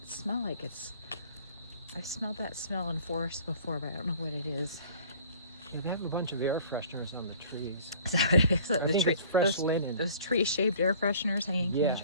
smell like? I've smelled that smell in forests before, but I don't know what it is. They have a bunch of air fresheners on the trees. Is that what it is? I think it's fresh linen. Those tree-shaped air fresheners hanging from the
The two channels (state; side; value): inverted; both; correlation -0.50